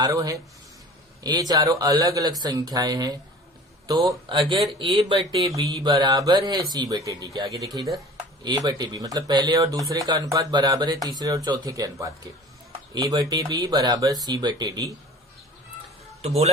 है, ये चारों अलग अलग संख्याएं हैं। तो अगर ए बटे बी बराबर है सी बटे डी के, आगे देखिए इधर ए बटे बी मतलब पहले और दूसरे का अनुपात बराबर है तीसरे और चौथे के अनुपात के। ए बटे बी बराबर सी बटे डी, तो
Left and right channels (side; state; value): both; normal; correlation 0.43